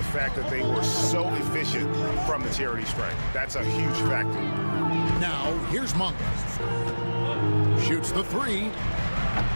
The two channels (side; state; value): both; inverted; correlation -1.00